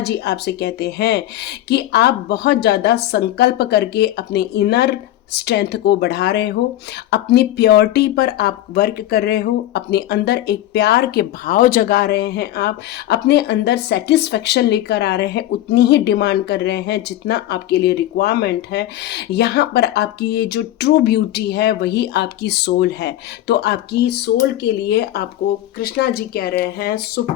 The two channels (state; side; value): quieter; right; 13.7 dB